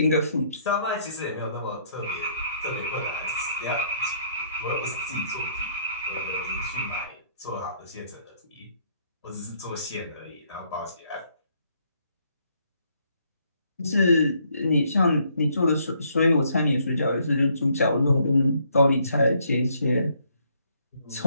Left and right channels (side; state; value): both; inverted; correlation -0.69